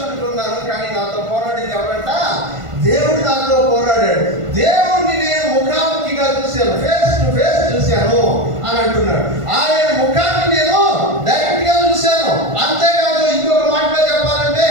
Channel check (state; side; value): late; left; 1.5 ms